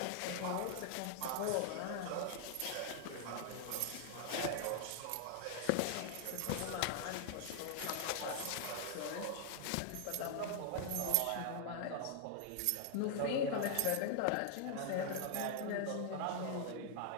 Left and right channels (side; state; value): both; different; correlation 0.00